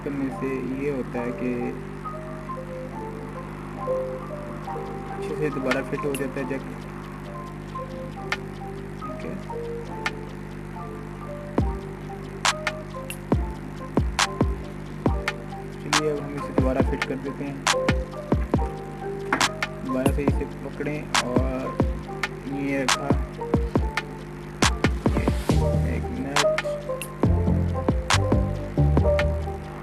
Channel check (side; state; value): both; identical; correlation 1.00